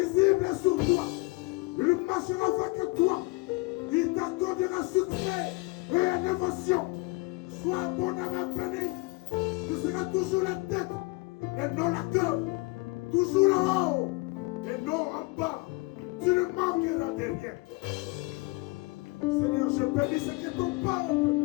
est sur toi. Il marchera avec toi. Il t'accordera succès et innovation. Sois abondamment béni. Tu seras toujours la tête et non la queue. Toujours en haut et non en bas. Tu ne manqueras de rien. Seigneur, je bénis ce que ton peuple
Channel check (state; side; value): quieter; right; 24.9 dB